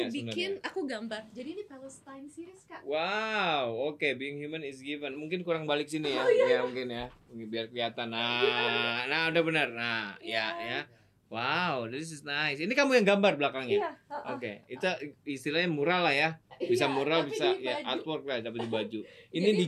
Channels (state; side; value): identical; both; correlation 1.00